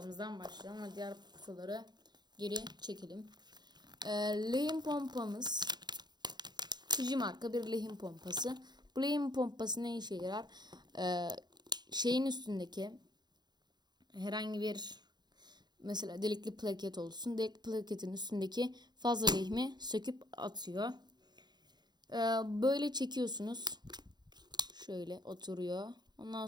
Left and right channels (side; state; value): left; late; 0.21 ms